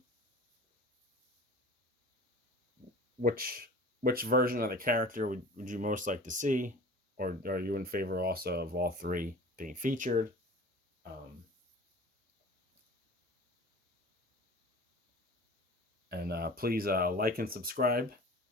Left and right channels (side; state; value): both; normal; correlation 0.40